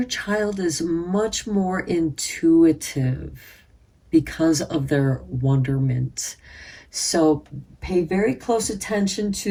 child is much more intuitive because of their wonderment. So pay very close attention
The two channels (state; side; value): identical; both; correlation 1.00